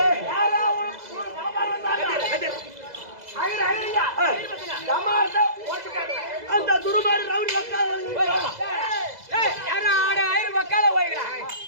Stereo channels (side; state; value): left; late; 2.0 ms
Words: அந்த துருமாறு ரவுடி